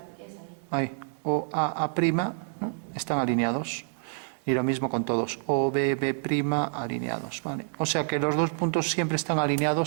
ahí. Ahí. O A', ¿no? Están alineados. Y lo mismo con todos. O B, B' alineados, ¿vale? O sea que los 2 puntos siempre están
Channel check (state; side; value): silent; left; 59 dB below the other